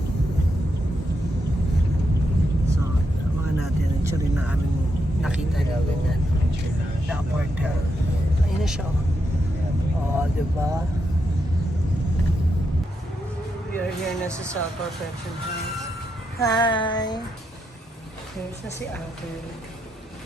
So, mga natin. Ito rin na aming nakita na ganyan. Na hotel. Ayun na siya. Oh, diba? We are here na sa South Perfection House. Hi! Here's na si Uncle.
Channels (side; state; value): both; normal; correlation 0.82